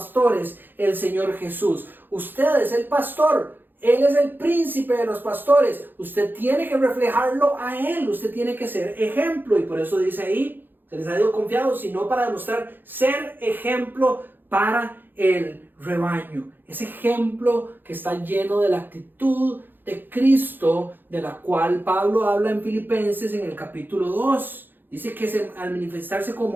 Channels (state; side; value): late; left; 0.093 ms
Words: el Señor Jesús. Usted es el pastor. Él es el príncipe de los pastores. Usted tiene que reflejarlo a Él. Usted tiene que ser ejemplo. Y por eso dice ahí, se les ha sido confiado, sino para demostrar ser ejemplo para el rebaño. Ese ejemplo que está lleno de la actitud de Cristo, de la cual Pablo habla en Filipenses en el capítulo 2. Dice que al manifestarse